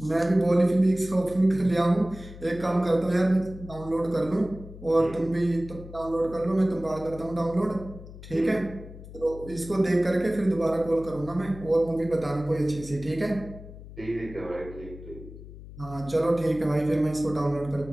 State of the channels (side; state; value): left; noise; hum, 15 dB below the sound